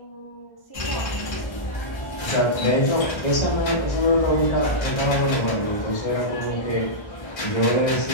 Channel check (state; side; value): late; right; 1.3 ms